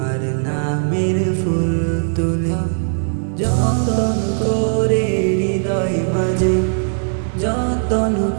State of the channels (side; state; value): left; silent; digital silence